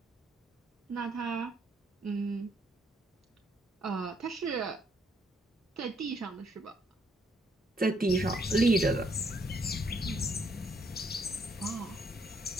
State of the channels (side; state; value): both; normal; correlation 0.71